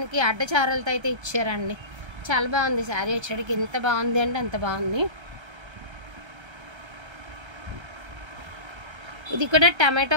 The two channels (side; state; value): left; late; 1.3 ms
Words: అడ్డచారలతో అయితే ఇచ్చారండి, చాలా బాగుంది శారీ వచ్చేటికి, ఎంత బాగుంది అంటే అంత బాగుంది। ఇది కూడా